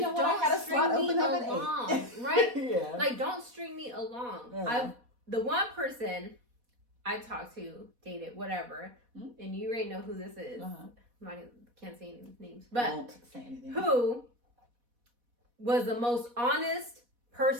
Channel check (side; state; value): left; late; 4.1 ms